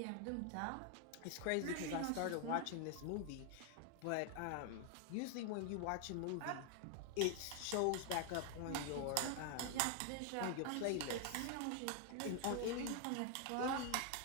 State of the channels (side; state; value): both; different; correlation 0.00